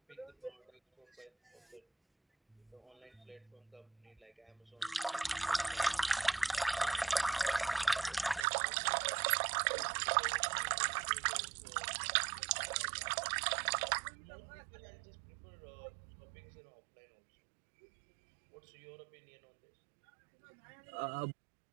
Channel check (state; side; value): drops out; left; at 8.5 s